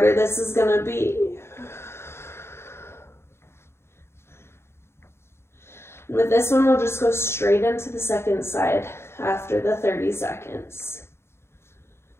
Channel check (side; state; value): right; late; 0.12 ms